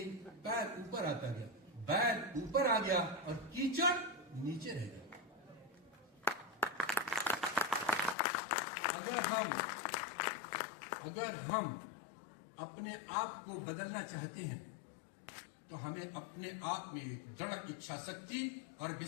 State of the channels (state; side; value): drops out; right; at 8.2 s